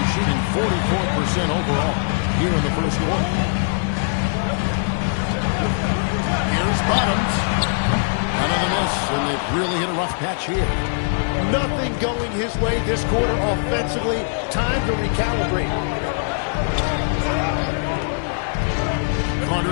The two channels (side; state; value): right; silent; 65 dB below the other